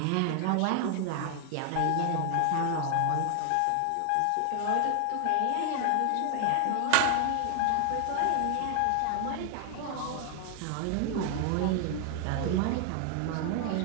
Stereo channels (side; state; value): both; different; correlation 0.00